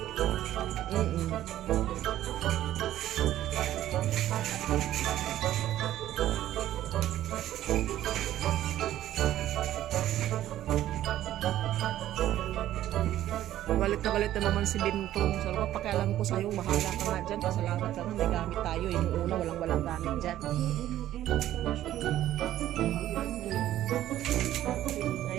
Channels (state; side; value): quieter; left; 13.0 dB